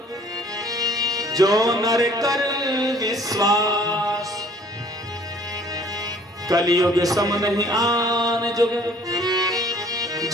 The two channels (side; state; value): both; normal; correlation 0.55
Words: जो नर कर विश्वास। कलियुग सम नहीं आन जुग,